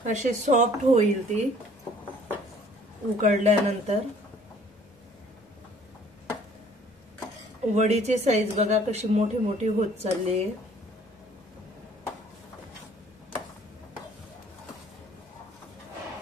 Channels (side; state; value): both; normal; correlation 0.56